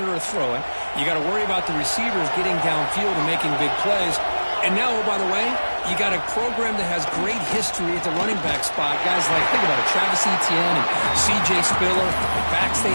or throw it. You got to worry about the receivers getting downfield and making big plays. And now, oh, by the way, you got a program that has great history at the running back spot. Guys like, think about it, Travis Etienne and C.J. Spiller, the backs they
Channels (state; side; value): inverted; both; correlation -1.00